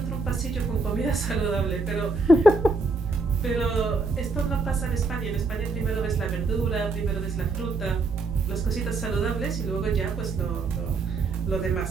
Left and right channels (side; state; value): left; quieter; 3.7 dB